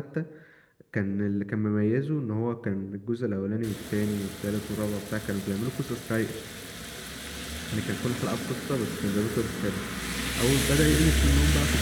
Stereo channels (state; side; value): identical; both; correlation 1.00